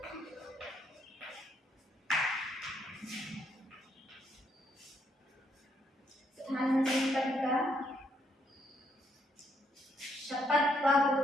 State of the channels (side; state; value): both; normal; correlation 0.74